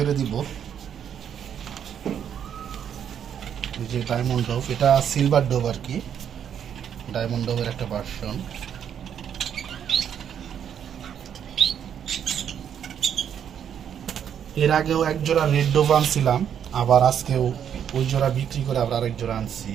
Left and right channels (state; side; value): quieter; left; 8.8 dB